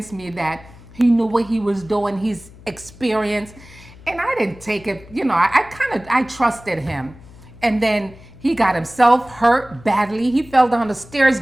me that he knew what he was doing, he's experienced, and I didn't take it, I trusted him. And then he got himself hurt badly. He fell down the stairs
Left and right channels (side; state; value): left; noise; hum, 21 dB below the sound